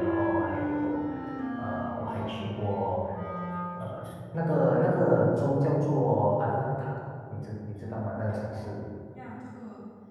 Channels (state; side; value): identical; both; correlation 1.00